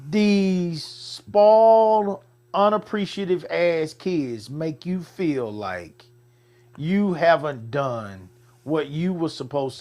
these spoiled, unappreciative ass kids make you feel like you haven't done what you were supposed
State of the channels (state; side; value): identical; both; correlation 1.00